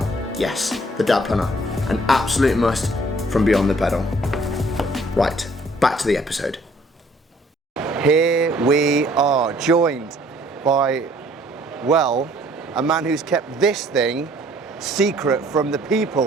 Yes, the Dad Planner, an absolute must from Beyond the Pedal. Right, back to the episode. Here we are, joined by, well, a man who's kept this thing secret from the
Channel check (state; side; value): normal; both; correlation 0.59